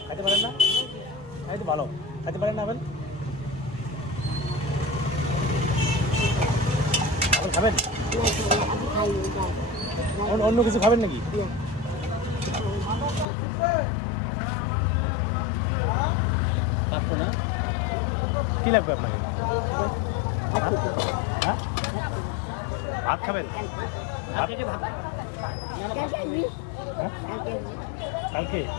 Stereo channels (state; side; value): drops out; right; at 13.2 s